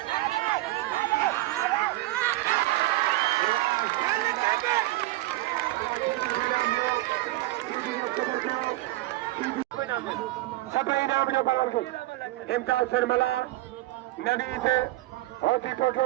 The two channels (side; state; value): left; quieter; 18.3 dB